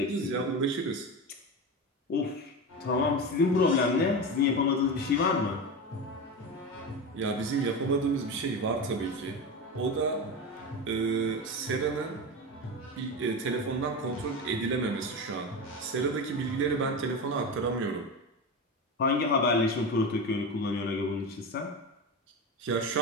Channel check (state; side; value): normal; both; correlation 0.22